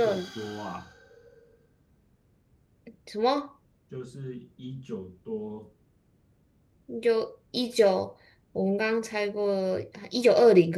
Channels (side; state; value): both; identical; correlation 1.00